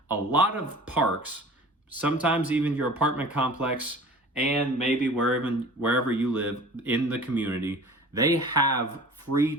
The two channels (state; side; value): normal; both; correlation 0.42